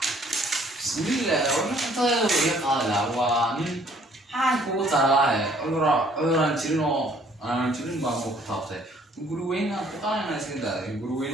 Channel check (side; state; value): both; normal; correlation 0.60